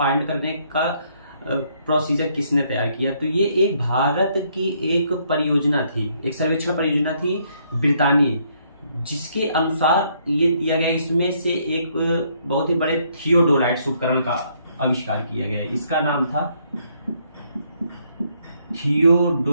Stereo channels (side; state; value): both; inverted; correlation -0.70